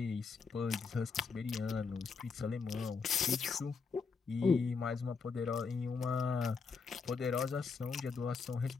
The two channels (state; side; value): quieter; right; 5.0 dB